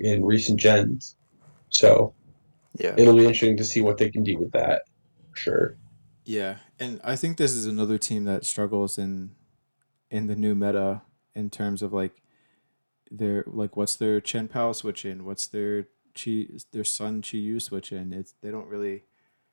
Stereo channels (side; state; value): both; inverted; correlation -1.00